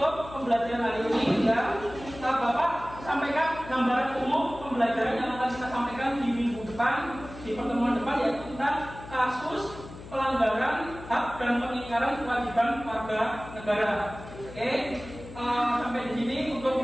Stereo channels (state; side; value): noise; left; hum, 15 dB below the sound